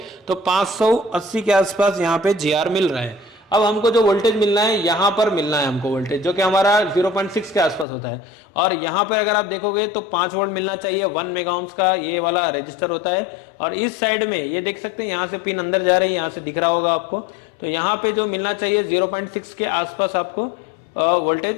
तो 580 के आसपास यहाँ पे GR मिल रहा है। अब हमको जो वोल्टेज मिलना है यहाँ पर मिलना है हमको वोल्टेज, जो कि हमारा 0.6 के आसपास होता है। और यहाँ पर अगर आप देखोगे तो 5 वोल्ट मिलना चाहिए, 1 मेगा ओम्स का ये वाला रजिस्टर होता है। और इस साइड में ये देख सकते हैं यहाँ से पिन अंदर जा रही है, यहाँ से दिख रहा होगा आपको। तो यहाँ पे जो मिलना चाहिए 0.6 के आसपास आपको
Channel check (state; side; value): drops out; right; at 7.9 s